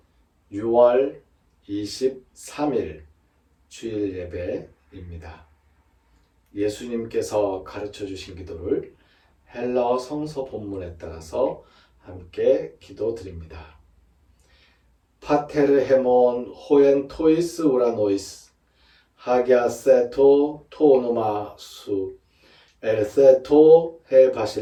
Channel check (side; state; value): both; identical; correlation 1.00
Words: 6월 23일 주일 예배입니다. 예수님께서 가르쳐 주신 기도를 헬라어 성서 본문에 따라서 함께 기도드립니다. 파테르 헤몬 호엔 토이스 우라노이스 하기아세토 토노마 수 엘세토 헤